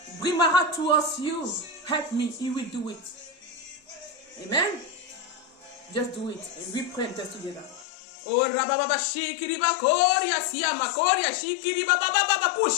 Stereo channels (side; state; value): right; drops out; at 7.9 s